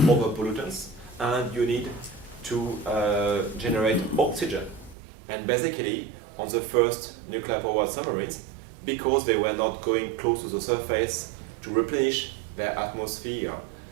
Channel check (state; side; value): drops out; left; at 5.0 s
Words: pollutants, and you need to generate oxygen. And basically, on the first nuclear-powered submarines, because they were not going close to the surface to replenish their atmosphere